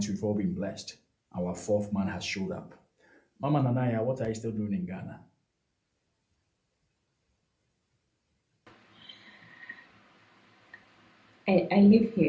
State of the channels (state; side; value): identical; both; correlation 1.00